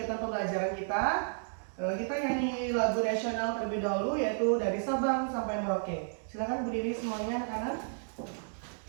pembelajaran kita nyanyi lagu nasional terlebih dahulu, yaitu dari Sabang sampai Merauke. Silakan berdiri semuanya anak-anak.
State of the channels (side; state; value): left; silent; digital silence